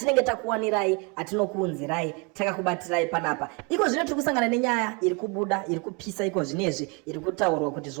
takuwanirai atinokuunzirai takakubatirai panapa. Iko zvino tiri kusangana nenyaya iri kubuda iri kupisa iko zvinezvi iri kutaurwa kuti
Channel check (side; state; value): left; quieter; 31.2 dB